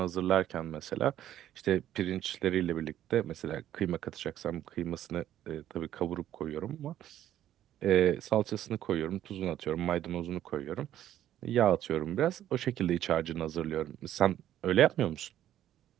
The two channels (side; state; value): left; quieter; 11.9 dB